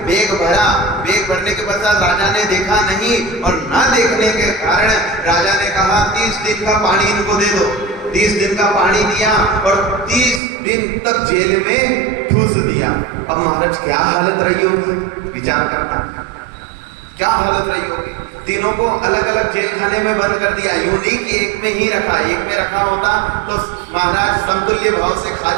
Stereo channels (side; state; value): left; drops out; at 10.4 s